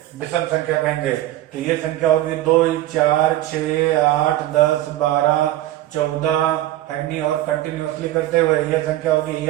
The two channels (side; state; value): left; quieter; 14.8 dB